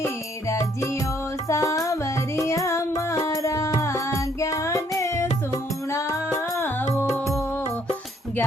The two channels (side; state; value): both; normal; correlation 0.67